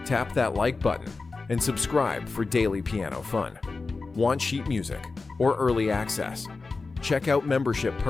tap that like button and subscribe for daily piano fun. Want sheet music or early access? Check out membership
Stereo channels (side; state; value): right; quieter; 4.0 dB